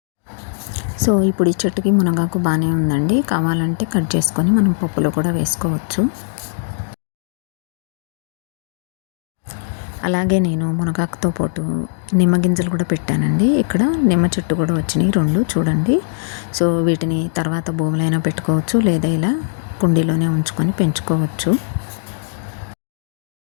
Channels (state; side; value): silent; right; digital silence